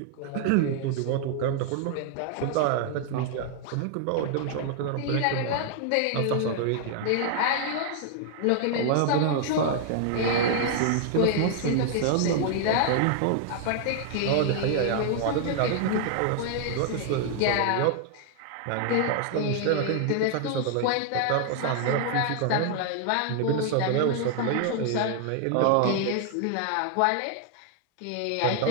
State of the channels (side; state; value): both; different; correlation 0.00